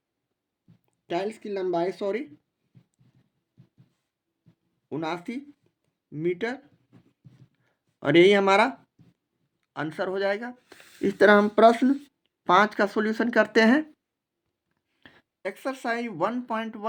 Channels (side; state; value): both; identical; correlation 1.00